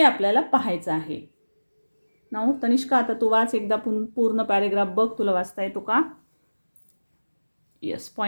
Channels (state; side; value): inverted; both; correlation -1.00